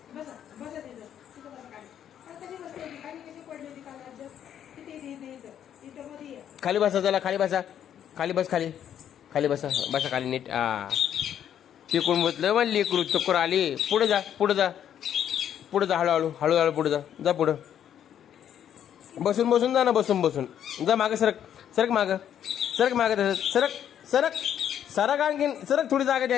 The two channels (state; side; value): quieter; right; 9.8 dB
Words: बसा तिथं बसा खाली. आता कशी बसली होती? खाली कशी पडली होती काल राज्यात? इथं मध्ये ये. खाली बसा चला खाली बसा खाली नीट तिकडून बसलं मग लेकरू चक्कर आली पुढे जा हळूहळू पुढे जा पुढं बसून जा ना बसून जा मागे सरक मागे तसं सरक आणखीन सरक थोडी जागा दे